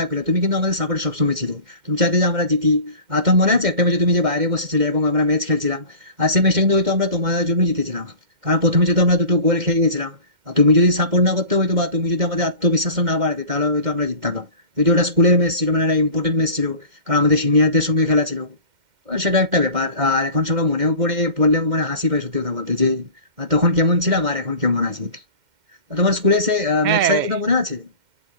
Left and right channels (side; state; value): left; late; 2.1 ms